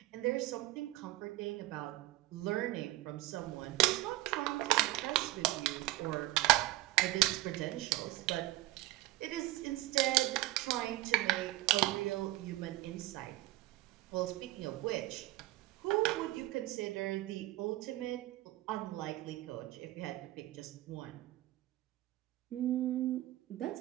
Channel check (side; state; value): left; quieter; 17.8 dB